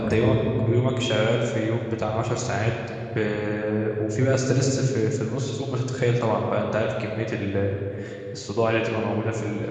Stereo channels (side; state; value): both; identical; correlation 1.00